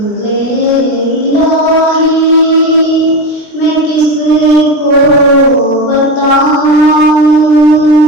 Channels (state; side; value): late; right; 20 ms